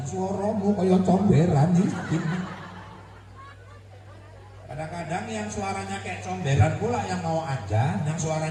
suaramu kaya comberan iki. Kadang-kadang yang suaranya kayak comberan pula yang mau ajan, yang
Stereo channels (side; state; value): both; identical; correlation 1.00